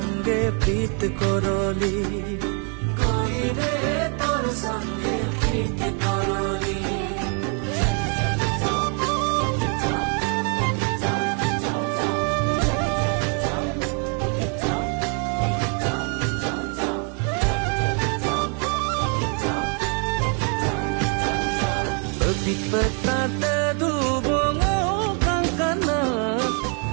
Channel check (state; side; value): quieter; left; 39.6 dB